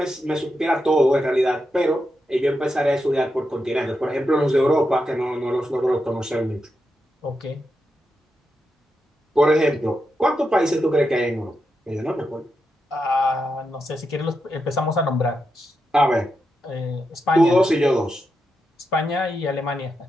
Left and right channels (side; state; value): both; normal; correlation 0.86